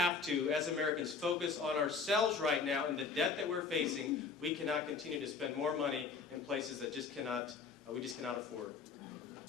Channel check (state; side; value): quieter; right; 5.0 dB